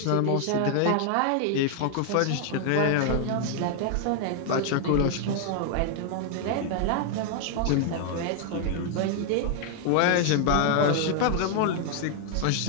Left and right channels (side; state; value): both; different; correlation 0.00